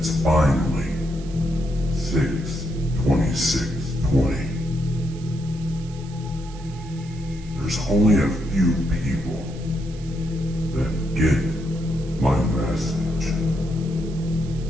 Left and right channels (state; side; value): noise; right; hiss, 22 dB below the sound